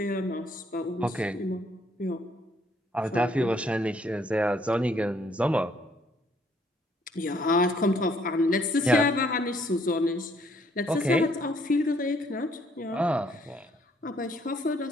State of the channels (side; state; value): both; normal; correlation 0.66